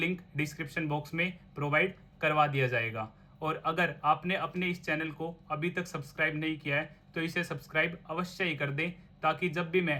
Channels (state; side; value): identical; both; correlation 1.00